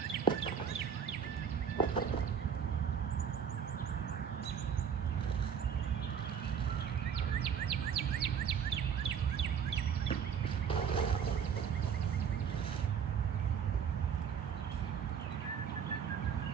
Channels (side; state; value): left; quieter; 7.5 dB